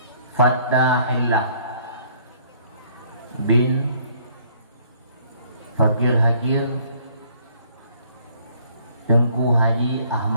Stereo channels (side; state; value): both; inverted; correlation -0.61